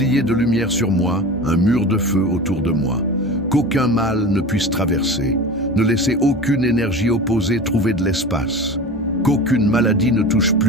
de lumière sur moi, un mur de feu autour de moi. Qu'aucun mal ne puisse traverser. Ne laissez aucune énergie opposée trouver de l'espace. Qu'aucune maladie ne touche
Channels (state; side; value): noise; right; hum, 25 dB below the sound